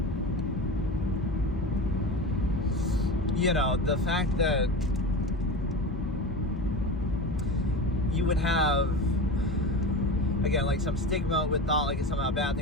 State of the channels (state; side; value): normal; both; correlation 0.27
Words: the fact that you would have, again, like some stigma with thought like it's somehow a bad